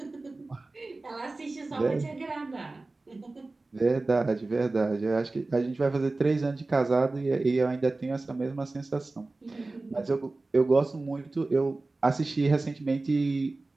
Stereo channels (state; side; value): quieter; left; 3.3 dB